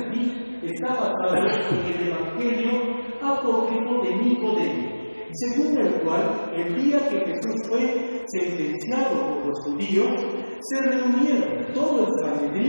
aquí está basado en el evangelio apócrifo de Nicodemo, según el cual, el día que Jesús fue sentenciado por los judíos, se reunieron todo el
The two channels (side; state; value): both; inverted; correlation -1.00